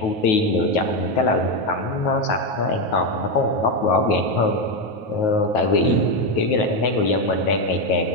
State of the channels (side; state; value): right; late; 9.4 ms